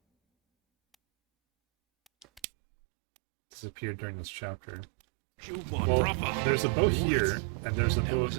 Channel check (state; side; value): drops out; left; at 2.4 s